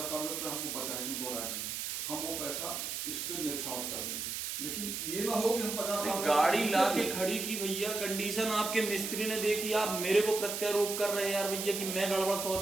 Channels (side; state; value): right; noise; hiss, 4 dB below the sound